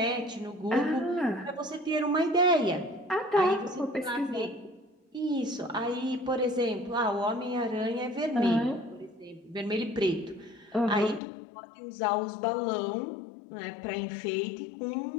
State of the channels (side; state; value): right; drops out; at 11.2 s